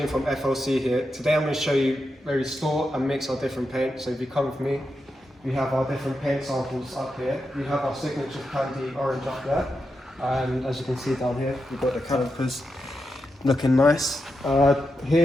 from FLC here. Today I'm going to show you where we store and mix our different paint. So if you come with me, we have our different paint samples up here. We have our signature candy orange up there. And as you can see down here, we've got the calipers looking nice.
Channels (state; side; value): normal; both; correlation 0.87